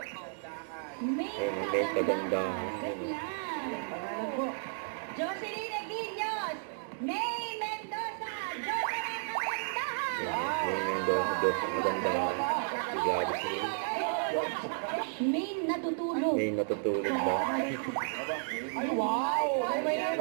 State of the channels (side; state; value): left; silent; digital silence